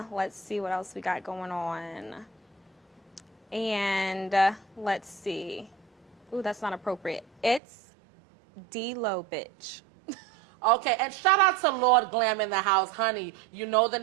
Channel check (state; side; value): drops out; left; at 7.6 s